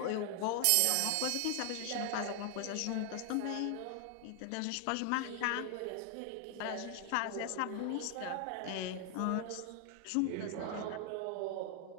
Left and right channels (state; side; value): different; both; correlation 0.00